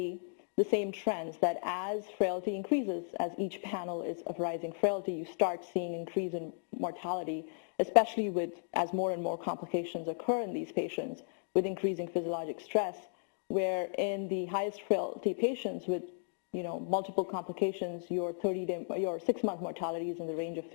the same trends, that as frailty increases, as each panel is of rising frailty, you start seeing increase in mortality, especially as more and more complications occur in these patients with increasing physiologic stress, where in the highest frailty patients with multiple complications, your 6-month mortality is in the range of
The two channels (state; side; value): silent; right; digital silence